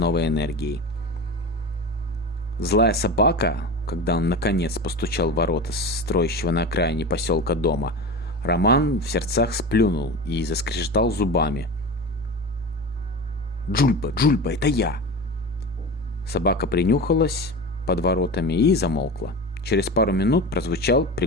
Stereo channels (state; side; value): normal; both; correlation 0.28